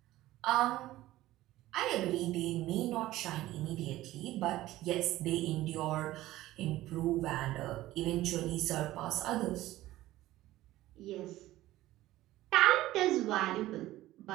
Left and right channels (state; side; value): quieter; left; 15.9 dB